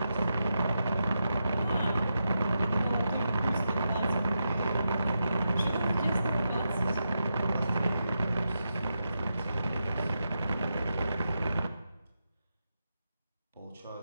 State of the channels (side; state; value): both; inverted; correlation -0.87